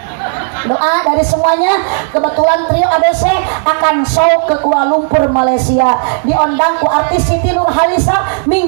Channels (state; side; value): silent; left; 73 dB below the other